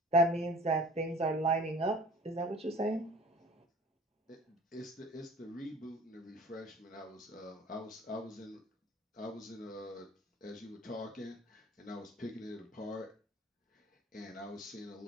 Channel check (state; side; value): normal; both; correlation 0.46